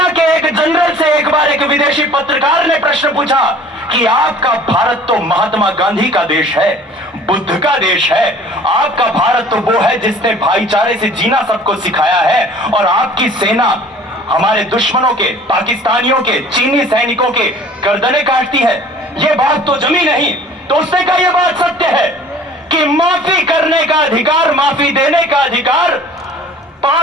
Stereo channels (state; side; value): normal; both; correlation 0.48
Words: के एक जनरल से एक बार एक विदेशी पत्रकार ने प्रश्न पूछा कि आपका भारत तो महात्मा गांधी का देश है, बुद्ध का देश है। आपका भारत तो वो है जिसने भाईचारे से जीना सबको सिखाया है, और आपकी सेना हमारे दुश्मनों के, पाकिस्तानियों के, चीनी सैनिकों के गर्दनें काटती है। ये बात तो जमी नहीं। तो उसने कहा यह बात सत्य है कि माफी करने का अधिकार, माफी देने का अधिकार,